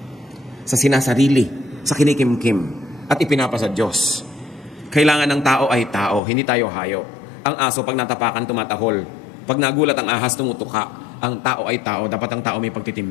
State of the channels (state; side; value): drops out; right; at 6.2 s